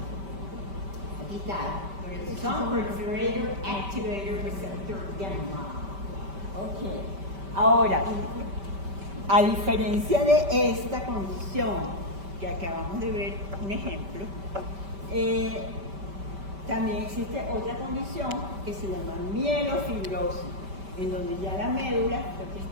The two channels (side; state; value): left; late; 5.1 ms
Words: Aquí está. Proliferator Activator Receptor Gamma. Ok. Ahora, a diferencia de esta condición que acabamos de ver, un ejemplo, También existe otra condición que se llama mielofibrosis, en donde ya la médula lo que